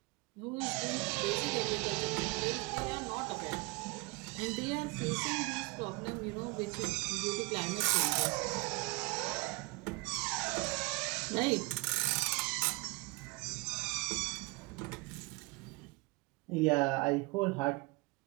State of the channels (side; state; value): left; quieter; 25.9 dB